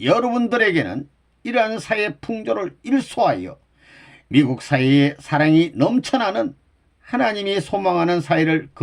여러분들에게는 이러한 사회 풍조를 일소하여 미국 사회에 사랑이 넘쳐나는 하나님이 소망하는 사회를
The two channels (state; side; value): identical; both; correlation 1.00